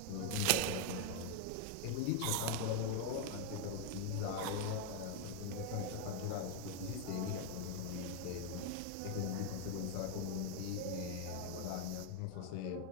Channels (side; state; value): both; different; correlation 0.01